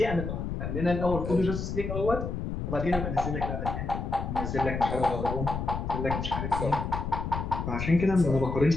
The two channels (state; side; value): noise; left; rumble, 4 dB below the sound